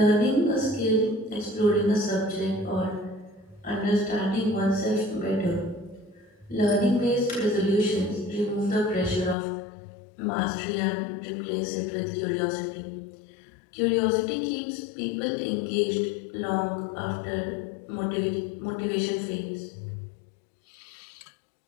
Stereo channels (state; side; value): drops out; right; at 9.3 s